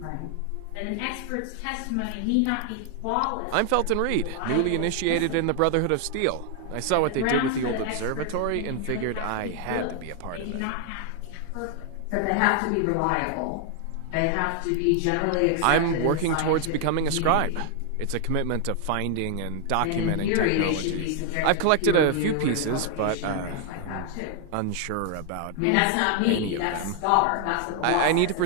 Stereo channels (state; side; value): different; both; correlation 0.00